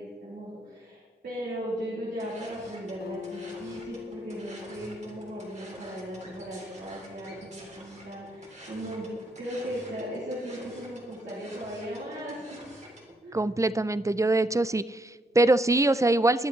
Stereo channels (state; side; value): normal; both; correlation 0.74